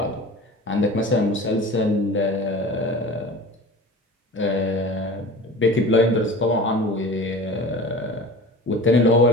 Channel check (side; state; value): both; normal; correlation 0.37